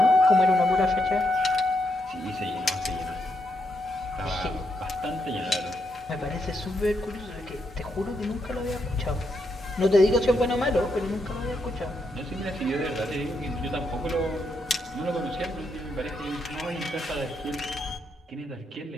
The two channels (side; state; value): both; normal; correlation 0.80